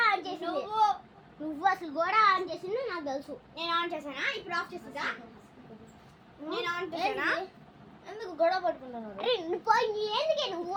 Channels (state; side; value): identical; both; correlation 1.00